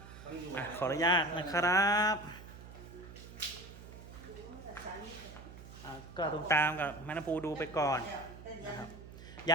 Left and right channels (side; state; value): right; noise; hum, 15 dB below the sound